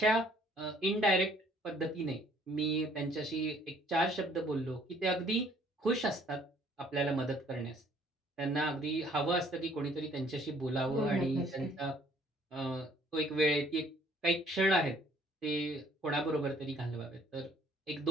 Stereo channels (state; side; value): normal; both; correlation 0.60